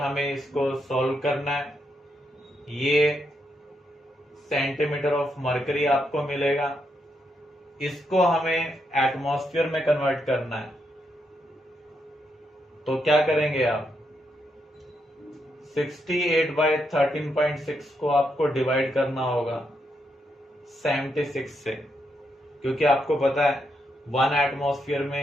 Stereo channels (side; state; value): both; normal; correlation 0.80